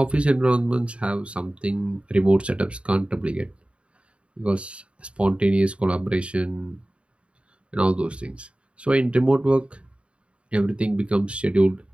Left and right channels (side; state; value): left; late; 0.059 ms